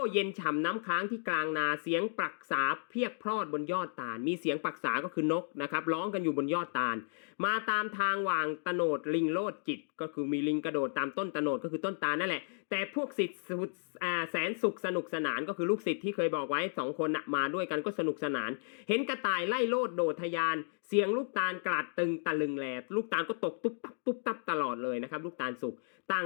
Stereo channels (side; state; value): right; silent; digital silence